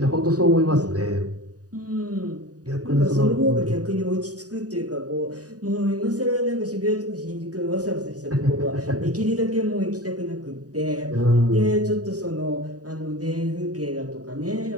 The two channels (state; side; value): late; left; 0.68 ms